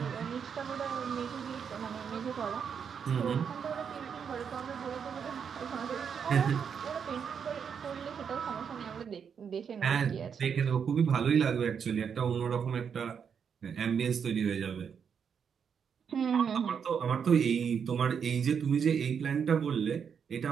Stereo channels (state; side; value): quieter; left; 7.1 dB